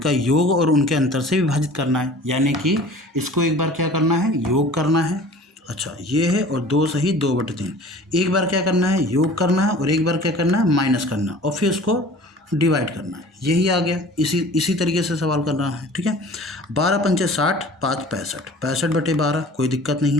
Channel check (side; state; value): both; normal; correlation 0.45